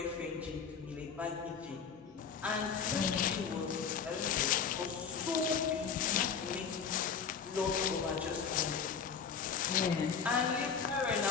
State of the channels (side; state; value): right; quieter; 6.5 dB